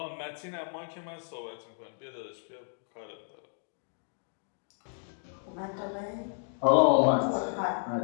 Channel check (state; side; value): silent; right; digital silence